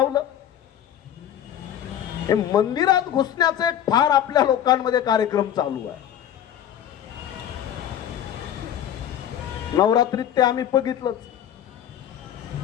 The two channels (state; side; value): quieter; right; 10.4 dB